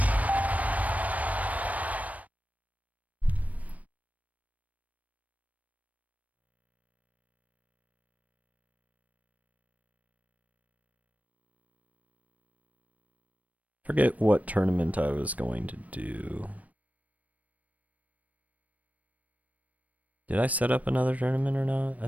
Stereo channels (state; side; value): late; left; 0.071 ms